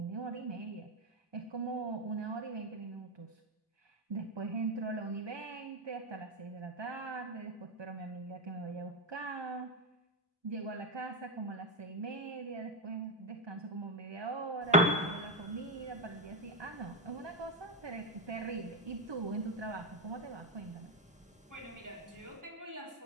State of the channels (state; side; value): normal; both; correlation 0.08